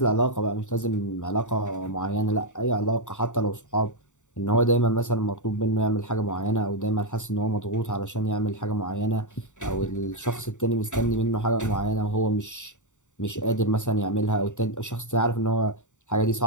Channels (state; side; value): late; right; 0.85 ms